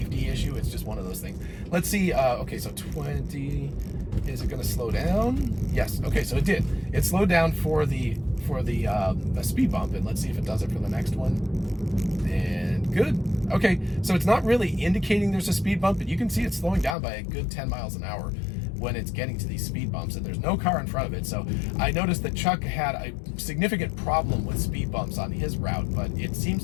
issue. It's just one of those things. Let's see. Okay, so 20. Is it going to slow down? Yes. Okay, so it did. It slowed down for the speed bump, and let's see if it does it for the next one. And good. Okay, so it's not really indicating there's a speed bump, but you can see it's slowing down by a good 10 miles an hour. when it's getting to these speed bumps, and there's no car in front of it. So I noticed that Chuck had a significant problem with speed bumps on his route, but it seems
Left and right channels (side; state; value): right; drops out; at 16.9 s